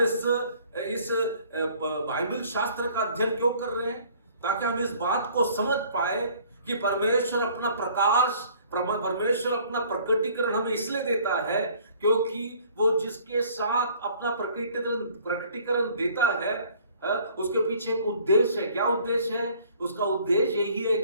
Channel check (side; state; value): both; inverted; correlation -0.55